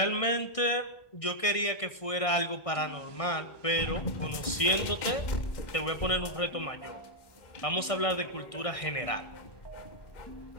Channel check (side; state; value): right; late; 1.6 ms